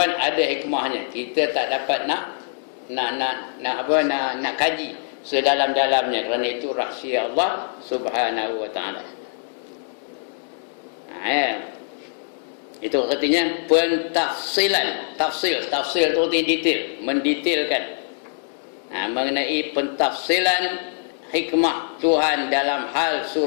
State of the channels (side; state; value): right; silent; digital silence